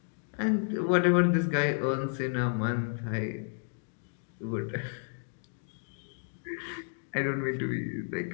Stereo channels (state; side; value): silent; right; 57 dB below the other